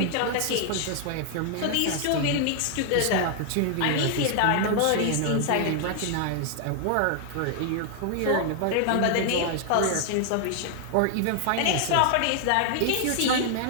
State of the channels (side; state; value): both; different; correlation 0.00